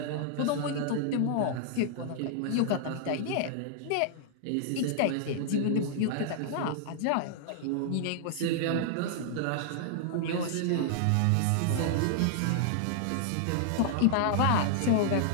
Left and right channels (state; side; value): different; both; correlation -0.01